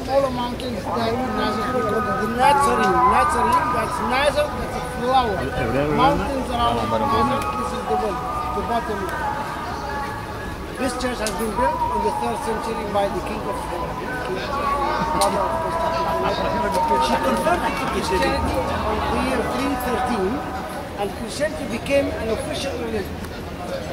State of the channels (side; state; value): both; identical; correlation 1.00